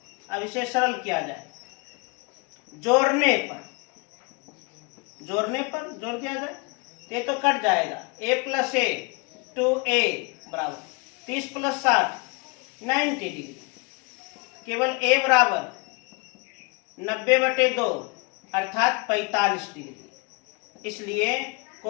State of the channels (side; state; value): right; quieter; 28.9 dB